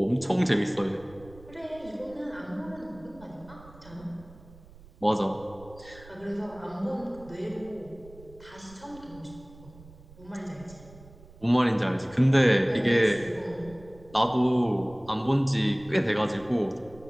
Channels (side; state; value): right; noise; rumble, 21 dB below the sound